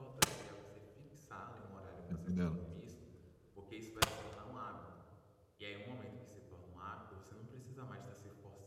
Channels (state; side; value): identical; both; correlation 1.00